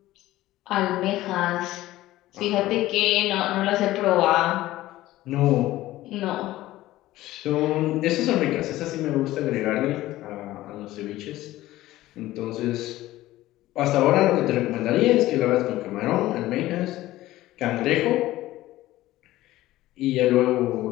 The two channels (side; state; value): right; quieter; 16.1 dB